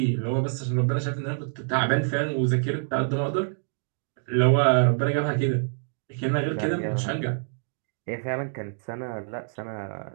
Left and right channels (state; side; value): silent; left; digital silence